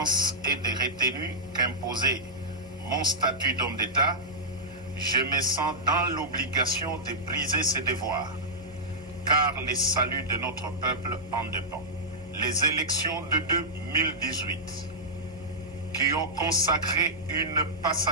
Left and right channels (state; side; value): normal; both; correlation -0.11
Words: et de retenue qu'imposait mon statut d'homme d'État, je me sens dans l'obligation de briser ces devoirs, car le salut de notre peuple en dépend. Les élections de 2018, qui ont consacré une